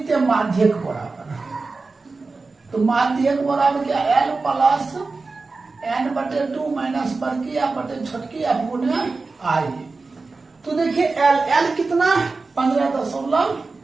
हैं माध्यक बराबर, तो माध्यक बराबर क्या L प्लस n/2 माइनस बड़की एफ बटे छोटकी एफ गुणे I। तो देखिए L कितना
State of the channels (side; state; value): left; quieter; 3.9 dB